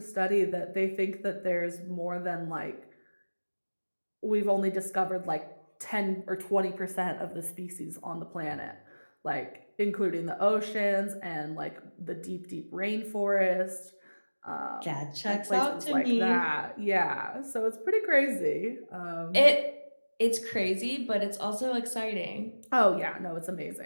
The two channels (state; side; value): inverted; both; correlation -1.00